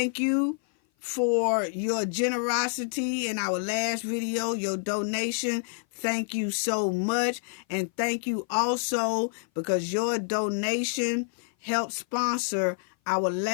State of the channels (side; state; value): right; silent; 56 dB below the other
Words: you for your generosity in our last video, your donation. Thank you so much. And thank you also because your donation helped sponsor our